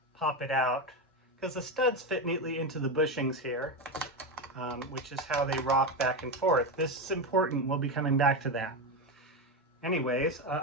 pop it out because the studs fit neatly into the bushings here. which is how they rock back and forth. This is important. We'll be coming back to that. Anyways,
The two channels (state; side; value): normal; both; correlation 0.14